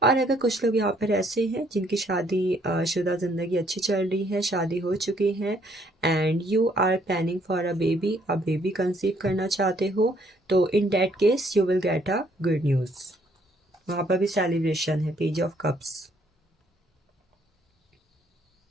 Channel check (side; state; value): both; normal; correlation 0.66